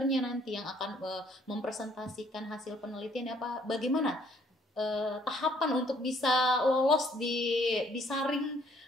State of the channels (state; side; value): normal; both; correlation 0.63